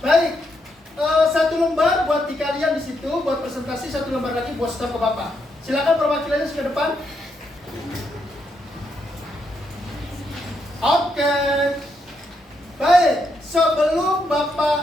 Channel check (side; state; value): both; normal; correlation 0.79